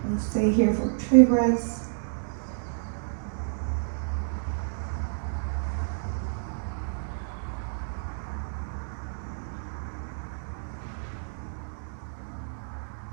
We'll stay here for 3 breaths.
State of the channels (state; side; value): silent; left; digital silence